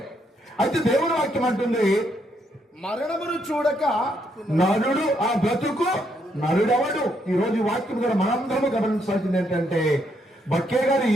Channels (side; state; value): both; normal; correlation 0.75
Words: అయితే దేవుని వాక్యం అంటుంది, మరణమును చూడక నరుడు ఆ బ్రతుకు నరుడెవడు. ఈ రోజు ఈ వాక్యం కూడా మనందరము గమనించాల్సింది ఏంటంటే, బక్కే గారు